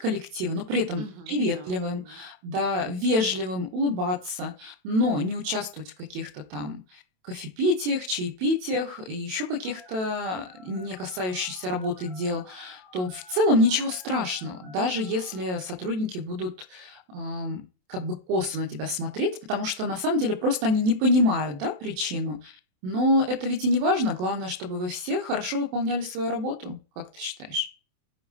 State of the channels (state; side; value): late; left; 27 ms